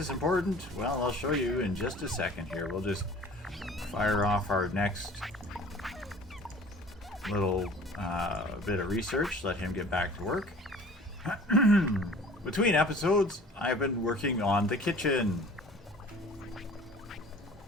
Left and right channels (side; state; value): both; normal; correlation 0.47